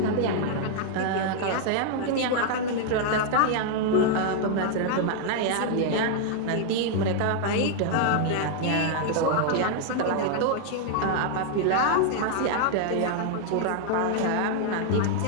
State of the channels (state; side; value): different; both; correlation 0.00